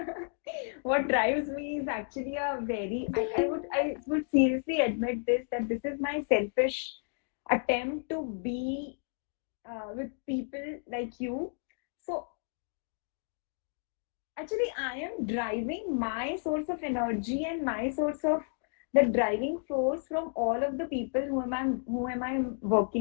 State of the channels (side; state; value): right; silent; 56 dB below the other